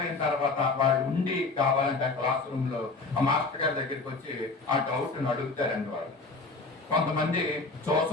తర్వాత వాళ్ళు ఉండి కావాలంటే ఆ క్లాస్ రూమ్ లో ఆ మాస్టర్ గారి దగ్గరికి వచ్చి ఆ డౌట్ ని అడుగుతారండి. వాళ్ళు కొంతమంది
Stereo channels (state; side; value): quieter; right; 3.8 dB